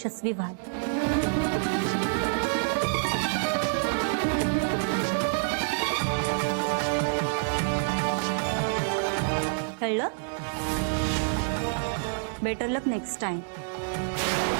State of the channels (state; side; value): silent; left; digital silence